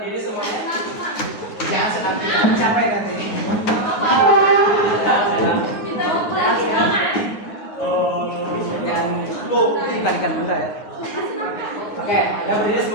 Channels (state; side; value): late; right; 9.5 ms